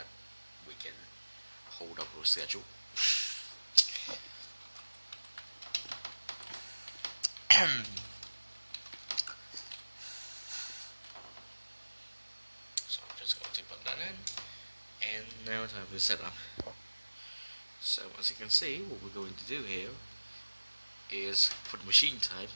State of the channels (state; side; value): inverted; both; correlation -1.00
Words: we can hold up our schedule. So I'm just going to put that in, and now time to set up. So as you can see, what we're going to do here is for the machine type,